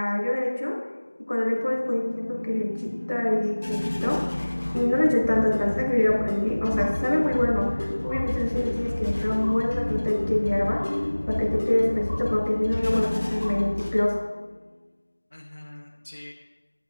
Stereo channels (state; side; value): inverted; both; correlation -1.00